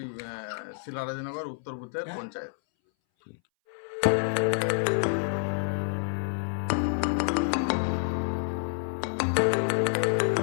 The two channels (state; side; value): silent; right; 59 dB below the other